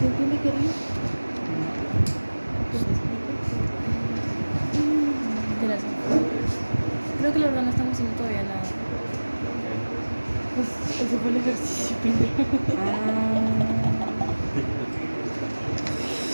tiene que ir? Creo que la verdad no estamos haciendo todavía nada. Ese fue el ejercicio pendejo.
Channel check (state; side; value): inverted; both; correlation -1.00